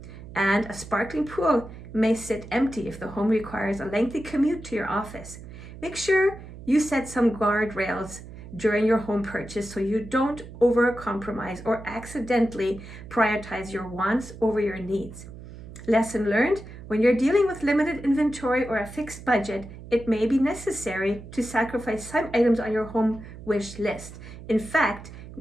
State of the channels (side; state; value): right; noise; hum, 14 dB below the sound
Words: And a sparkling pool may sit empty if the home requires a lengthy commute to your office. Make sure you set some guardrails during your home purchase so you don't over-compromise or accidentally prioritize your wants over your needs. Lesson learned: when you're dealing with limited inventory or a fixed budget, it may be necessary to sacrifice some items on your home wish list. In fact,